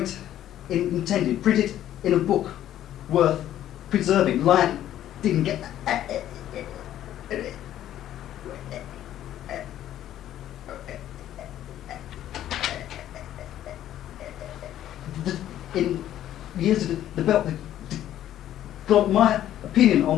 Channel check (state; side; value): quieter; right; 12.1 dB